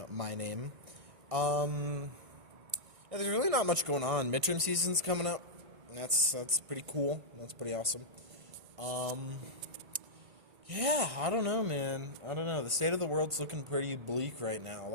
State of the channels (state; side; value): late; left; 1.5 ms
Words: my name. Yeah, there's really not much going on. Midterm season's coming up. That's pretty cool. That's pretty awesome. Yeah, I don't know, man. I don't know. The state of the world's looking pretty bleak right now. A